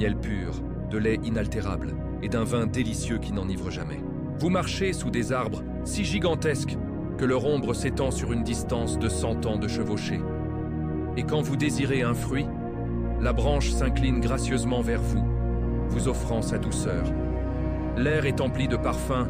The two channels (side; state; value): both; identical; correlation 1.00